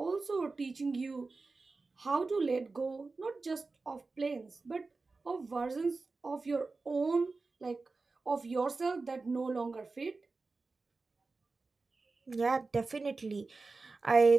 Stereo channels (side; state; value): left; quieter; 3.9 dB